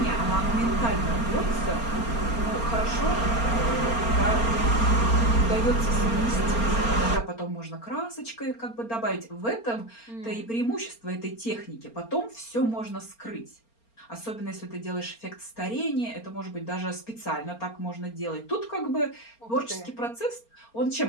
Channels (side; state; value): right; late; 4.3 ms